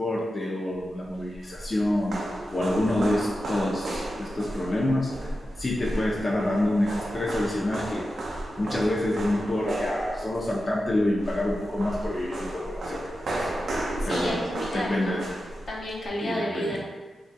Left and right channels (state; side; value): normal; both; correlation 0.91